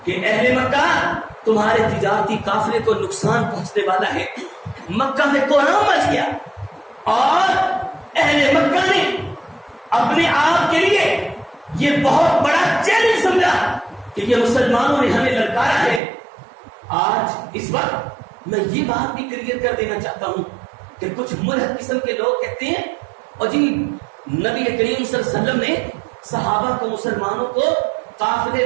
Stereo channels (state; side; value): drops out; left; at 16.0 s